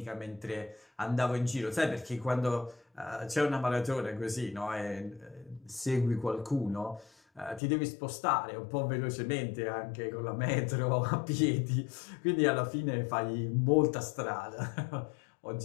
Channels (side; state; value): right; drops out; at 7.6 s